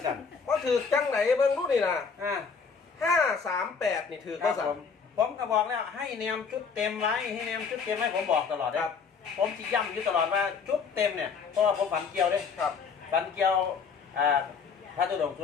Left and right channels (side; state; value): right; quieter; 5.6 dB